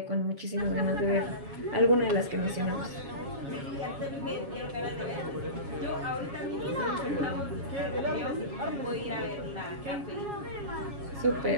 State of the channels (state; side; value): late; left; 7.3 ms